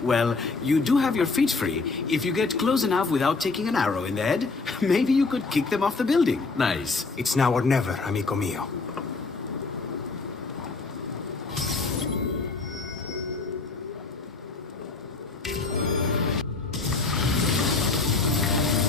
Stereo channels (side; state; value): right; quieter; 4.0 dB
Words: Well, you do have your feet free. If you get close enough without taking an arrow in the head, maybe you could kick them off the building. Nice. It's now or never, amico mio.